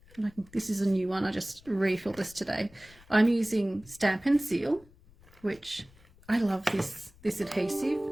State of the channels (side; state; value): left; noise; rumble, 26 dB below the sound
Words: this is a new one, I just refilled this today. I'm using Stampin' Seal, which I love this adhesive,